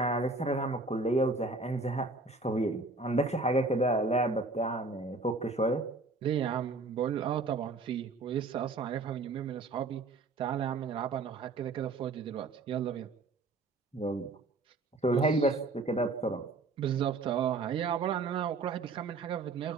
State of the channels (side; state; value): left; quieter; 3.5 dB